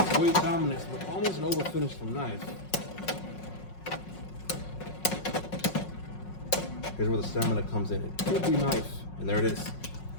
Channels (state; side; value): late; right; 5.5 ms